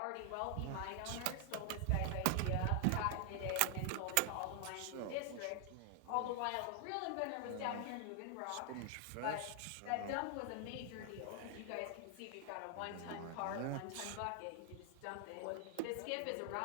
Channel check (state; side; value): different; both; correlation 0.00